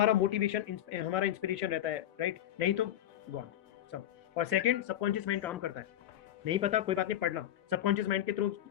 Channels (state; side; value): quieter; right; 12.1 dB